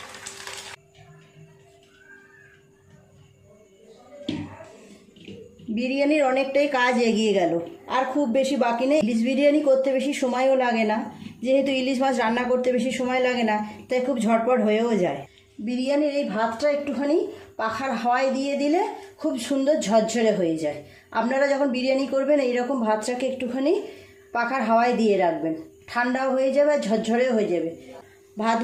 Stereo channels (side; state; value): both; identical; correlation 1.00